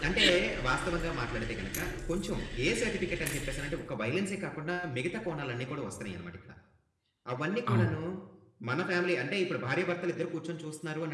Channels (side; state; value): both; identical; correlation 1.00